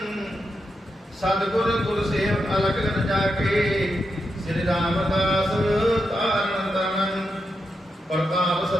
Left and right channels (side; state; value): both; normal; correlation 0.86